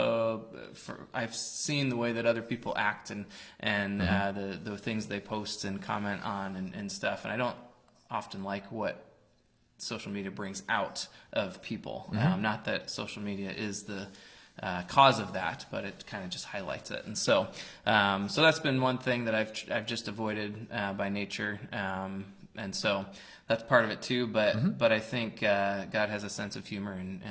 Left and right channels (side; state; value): both; identical; correlation 1.00